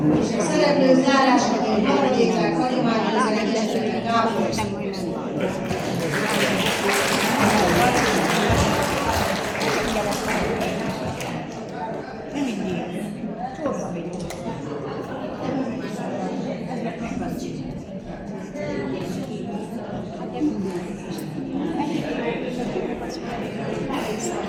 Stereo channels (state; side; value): identical; both; correlation 1.00